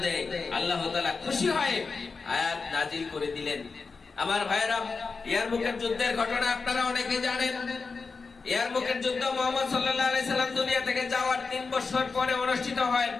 দেয়। আল্লাহ তাআলা খুশি হয়ে আয়াত নাজিল করে দিলেন। আমার ভাইরা, ইয়ারমুকের যুদ্ধের ঘটনা আপনারা অনেকে জানেন। ইয়ারমুকের যুদ্ধ মুহাম্মদ সাল্লাল্লাহু আলাইহি সাল্লাম দুনিয়া থেকে যাওয়ার 3 বছর পরে অনুষ্ঠিত হয়।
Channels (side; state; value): right; quieter; 4.5 dB